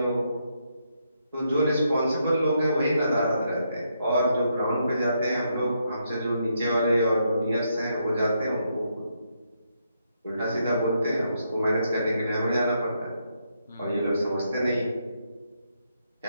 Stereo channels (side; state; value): both; inverted; correlation -0.78